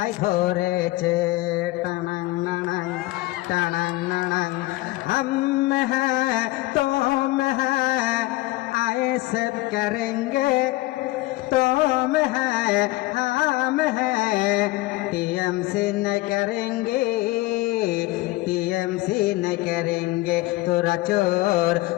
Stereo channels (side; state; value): right; quieter; 19.5 dB